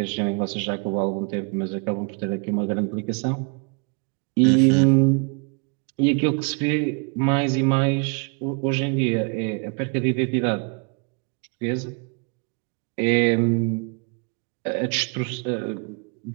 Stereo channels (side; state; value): left; quieter; 35.5 dB